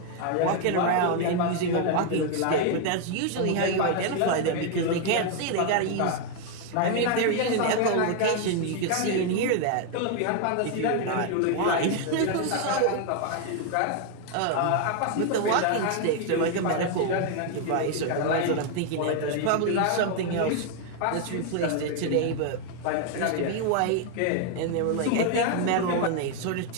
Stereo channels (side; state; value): both; different; correlation 0.01